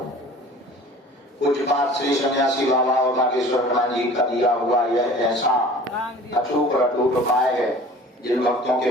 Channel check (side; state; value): both; normal; correlation 0.45